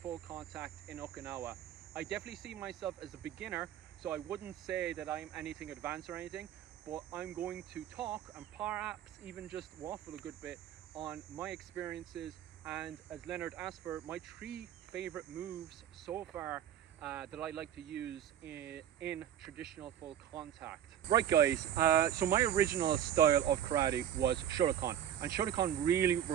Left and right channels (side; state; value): left; quieter; 10.3 dB